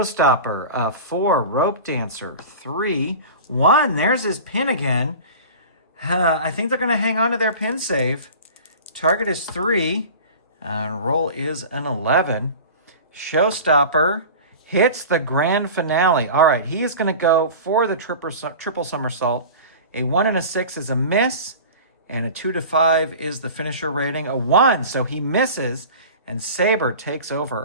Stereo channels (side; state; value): both; inverted; correlation -0.36